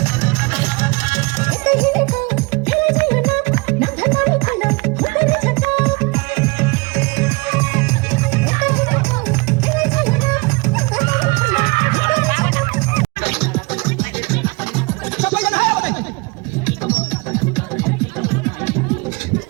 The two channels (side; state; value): left; quieter; 27.4 dB